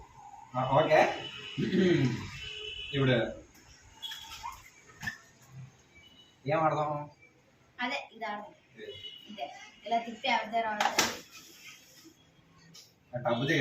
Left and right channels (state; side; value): identical; both; correlation 1.00